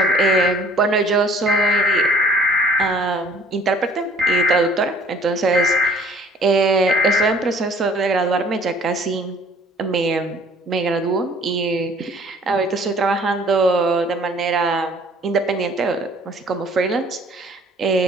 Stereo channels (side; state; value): both; normal; correlation 0.54